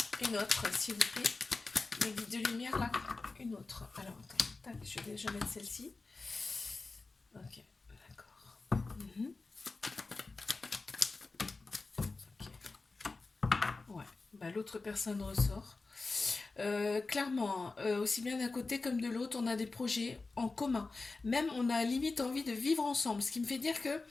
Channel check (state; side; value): quieter; right; 3.7 dB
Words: Une autre, s'il vous plaît. Mes guides de lumière, là. Une autre. Alors, attends. Tac, je vais déjà mettre celle-ci. Ok, d'accord. Mhm. Ouais, bah, l'autre personne ressort. Clairement, hein, aussi bien d'un côté comme de l'autre, on a des projets en commun. Même, on a limite envie de vivre ensemble. Ce qui me fait dire que